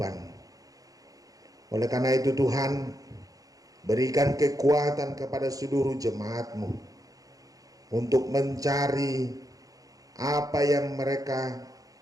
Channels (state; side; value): late; left; 0.17 ms